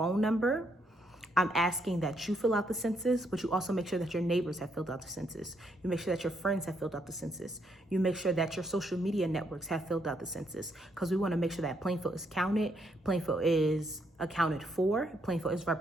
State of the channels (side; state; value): both; normal; correlation 0.75